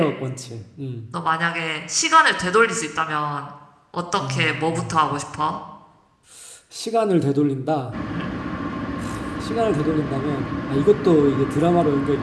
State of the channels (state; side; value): identical; both; correlation 1.00